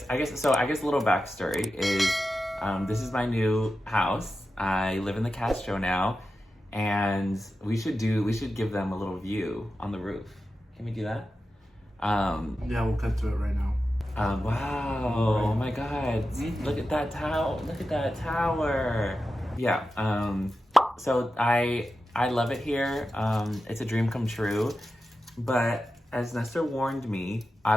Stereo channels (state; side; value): normal; both; correlation 0.91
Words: a little backstory is, this is my new house. I live in the Castro now, and we should give them a little view on the roof. Can we do that? Yeah, we'll cut to it right now. Wow! Right. Oh my God! Mm-hmm. Look at that tower! Look at that tower! Yeah. So I love it here. It's a dream come true. But as Nestor warned me,